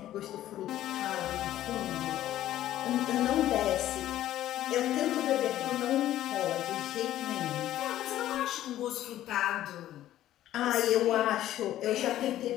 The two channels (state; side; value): quieter; right; 13.2 dB